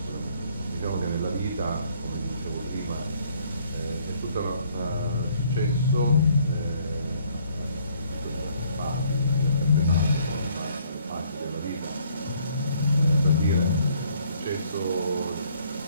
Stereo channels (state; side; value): inverted; both; correlation -0.63